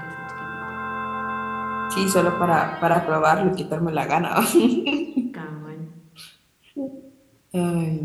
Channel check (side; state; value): both; identical; correlation 1.00